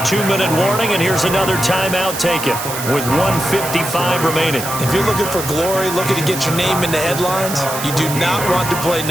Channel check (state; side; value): noise; right; hiss, 7 dB below the sound